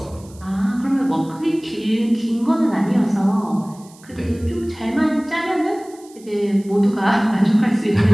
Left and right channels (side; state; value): right; noise; hiss, 25 dB below the sound